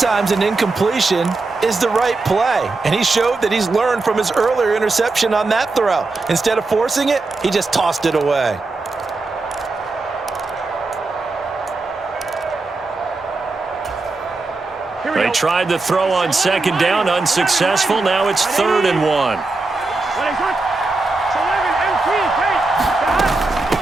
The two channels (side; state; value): left; quieter; 3.5 dB